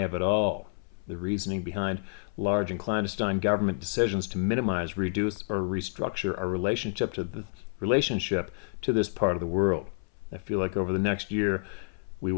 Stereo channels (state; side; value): silent; right; 58 dB below the other